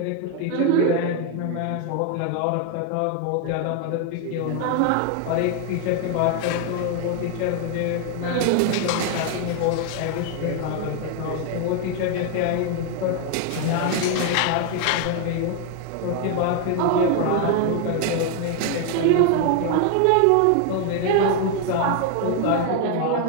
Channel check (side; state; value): both; different; correlation 0.01